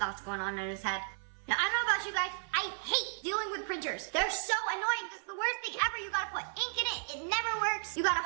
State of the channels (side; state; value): left; silent; 55 dB below the other